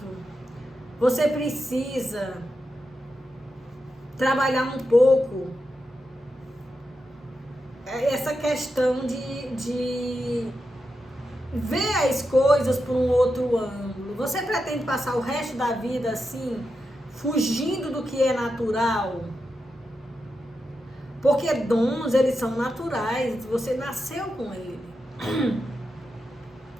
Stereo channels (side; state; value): both; normal; correlation 0.88